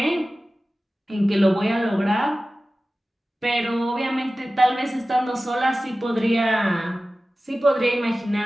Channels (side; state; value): both; normal; correlation 0.96